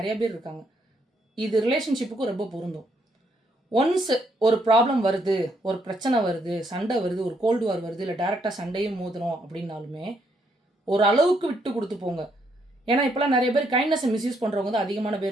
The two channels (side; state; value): both; normal; correlation 0.73